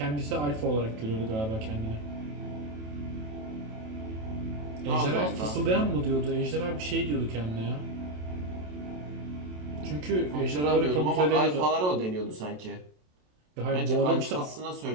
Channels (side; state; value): left; late; 27 ms